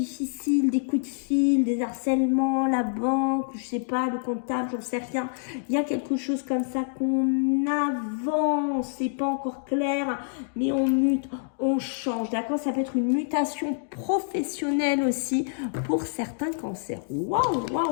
des coups de fil, des harcèlements, la banque, je sais pas, le comptable, j'en sais rien. Il y a quelque chose comme ça qu'on avance, c'est pas encore clair, mais on mute, on change, d'accord? Ça peut être une mutation professionnelle aussi pour certains cancers. Waouh,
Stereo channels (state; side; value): silent; right; digital silence